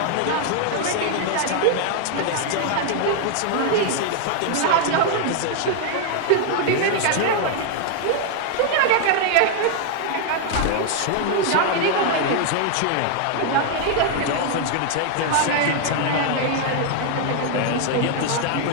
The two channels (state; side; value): different; both; correlation 0.00